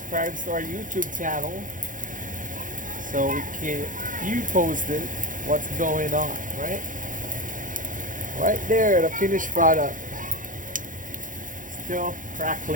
to our YouTube channel so we can you posted what's going on, right? Right there, the finished product. Still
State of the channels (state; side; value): late; left; 0.38 ms